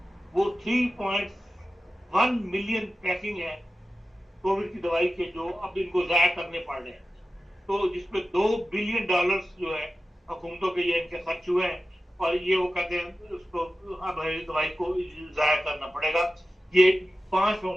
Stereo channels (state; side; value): normal; both; correlation 0.94